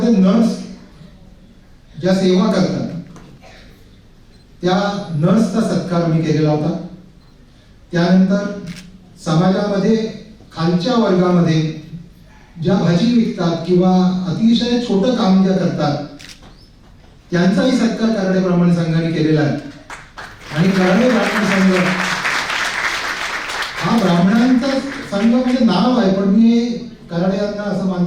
नर्स ज्या सेवा करतात त्या नर्सचा सत्कार आम्ही केलेला होता. त्यानंतर समाजामध्ये खालच्या वर्गामध्ये ज्या भाजी विकतात किंवा अतिशय छोटं काम ज्या करतात त्यांचाही सत्कार कराडे ब्राह्मण संघाने केलेला आहे. आणि कराडे ब्राह्मण संघ हा ब्राह्मणांचा संघ म्हणजे नाव आहे, पण मी कराडे यांना असं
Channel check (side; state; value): both; identical; correlation 1.00